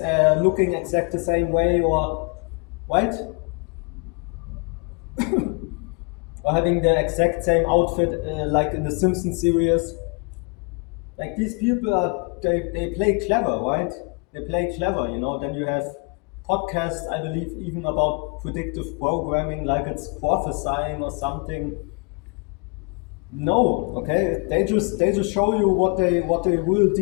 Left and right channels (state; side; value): quieter; right; 32.7 dB